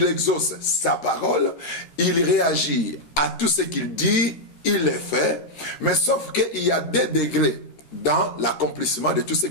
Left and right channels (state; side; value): late; right; 13 ms